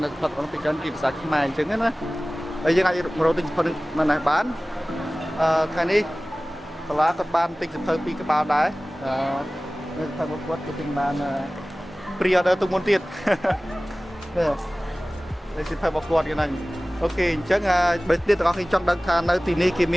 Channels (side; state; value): both; normal; correlation 0.98